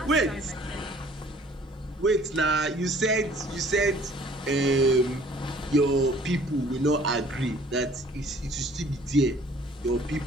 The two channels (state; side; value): normal; both; correlation 0.55